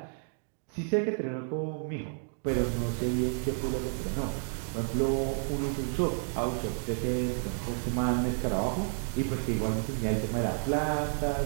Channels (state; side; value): silent; left; 57 dB below the other